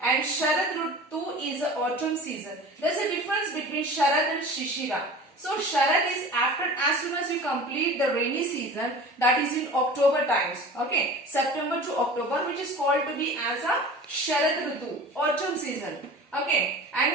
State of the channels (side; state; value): both; normal; correlation 0.38